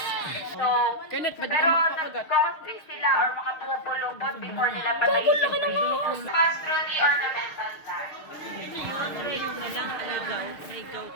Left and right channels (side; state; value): right; late; 6.5 ms